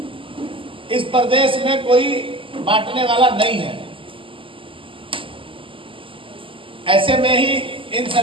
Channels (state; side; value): late; left; 0.25 ms